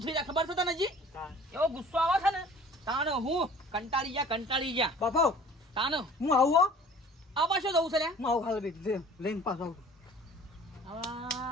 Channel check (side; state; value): both; normal; correlation 0.48